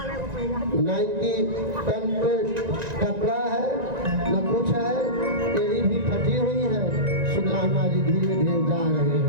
नाइकी तन पे कपड़ा है न कुछ है, तेरी भी फटी हुई है। सुदामा जी धीरे धीरे जा रहे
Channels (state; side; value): late; left; 1.9 ms